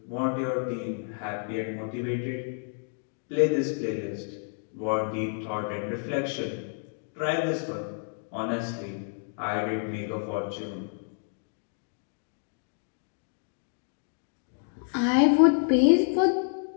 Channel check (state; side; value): silent; right; 58 dB below the other